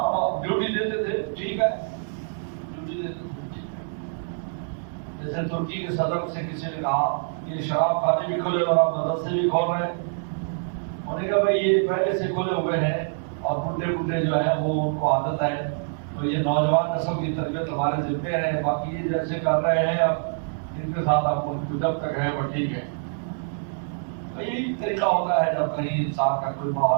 ڈیوٹی دیتے تھے ٹھیک ہے، ڈیوٹی دیتے تھے ٹھیک ہے. جیسے ترکی کے صدر سے کسی نے کہا کہ یہ شراب خانے بھی کھولے اور آپ مدرسے بھی کھول رہے ہیں. انہوں نے کہا بھائی یہ پہلے سے کھولے ہوئے ہیں اور بڈھے جو ہیں وہ ان کو عادت ہے، تو یہ نوجوان نسل کی تربیت ہمارے ذمہ ہے، باقی یہ جیسے کر رہے ہیں اب ان کے ساتھ آپ ان کو جب تک ہے وہ ٹھیک ہے. یہی طریقہ ہوتا ہے جب کہیں انسان کا کوئی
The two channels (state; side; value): silent; left; 61 dB below the other